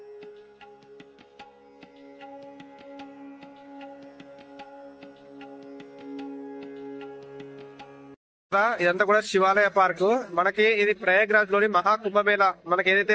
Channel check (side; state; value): both; identical; correlation 1.00